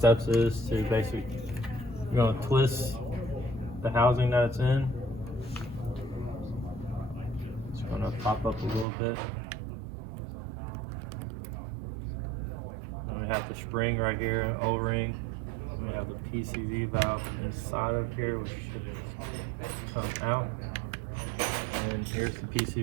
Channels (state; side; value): drops out; left; at 8.8 s